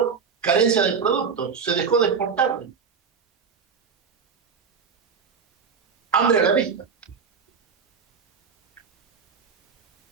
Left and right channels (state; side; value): quieter; left; 6.0 dB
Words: carencia de productos, se dejó de exportar. Hambre a la vista.